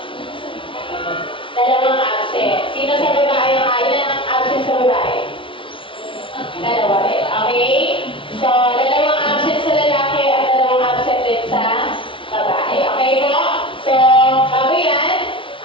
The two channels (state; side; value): late; right; 0.25 ms